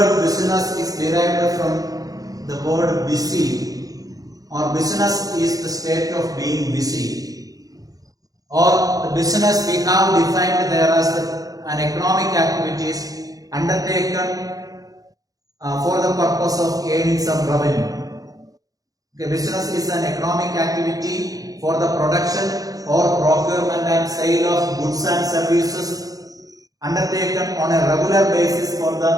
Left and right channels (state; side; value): late; left; 0.17 ms